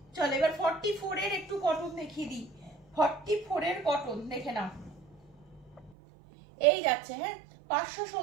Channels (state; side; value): drops out; left; at 6.0 s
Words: চল এবার 44 এর একটু কটন দেখিয়ে দিই। 44 এর কটন দেখে নাও, এই যাচ্ছে, হ্যাঁ